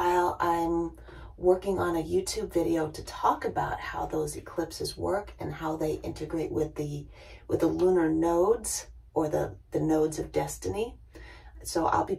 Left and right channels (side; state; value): both; identical; correlation 1.00